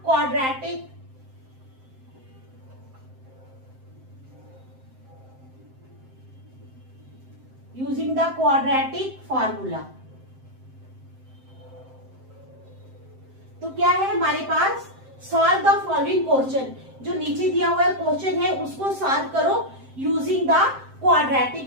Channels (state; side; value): late; left; 7.7 ms